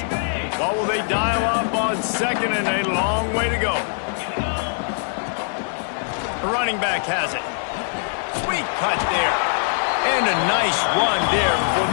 What will they dial up on second, and a long way to go. The running back has it. Sweet cut there. And a nice run there before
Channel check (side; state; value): right; silent; 64 dB below the other